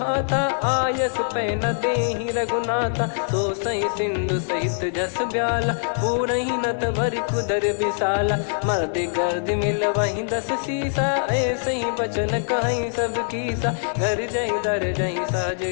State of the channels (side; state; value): right; silent; 56 dB below the other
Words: हाथा आयस पै न देहि रघुनाथा। सो सही सिंधु सहित जस ब्याला पूरहि नत भर कुदर विशाला। मर्द गर्द मिल वहीं 10 सीसा ऐसे ही बचन कहीं सब कीसा। घर जय दर जय सहज